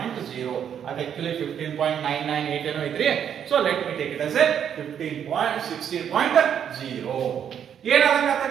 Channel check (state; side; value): quieter; left; 8.8 dB